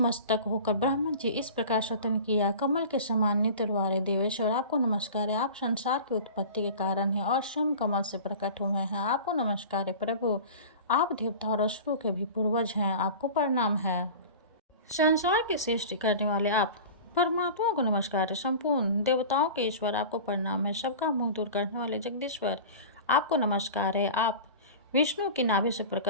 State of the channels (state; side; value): inverted; both; correlation -0.36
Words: होकर ब्रह्मा जी इस प्रकार स्वतंत्र किया। कमल के समान नेत्र वाले देवेश्वर, आपको नमस्कार है। आप संसार की उत्पत्ति के कारण हैं और स्वयं कमल से प्रकट हुए हैं। आपको नमस्कार है। प्रभु, आप देवता और असुरों के भी पूर्वज हैं। आपको प्रणाम है। संसार की सृष्टि करने वाले आप परमात्मा को नमस्कार है। संपूर्ण देवताओं के ईश्वर, आपको प्रणाम है। सबका मुंह दूर करने वाले जगदीश्वर, आपको नमस्कार है। आप विष्णु की नाभि से